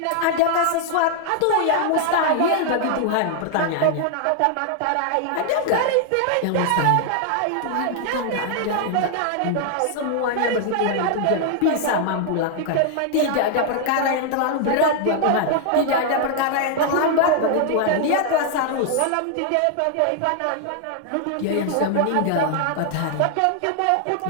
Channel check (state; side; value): different; both; correlation 0.00